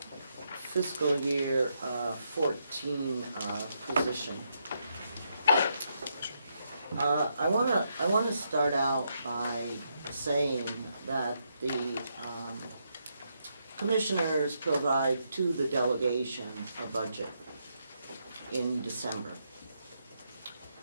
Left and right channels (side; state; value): both; inverted; correlation -0.79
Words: fiscal year 14 position. I want to start out by saying that the commissioners provide to the delegation a budget in December